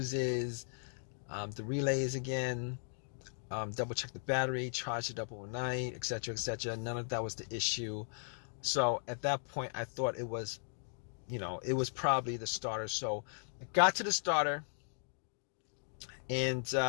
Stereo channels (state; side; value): silent; right; digital silence